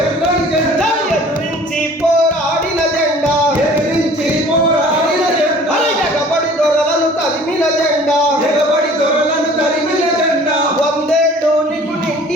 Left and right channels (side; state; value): both; normal; correlation 0.49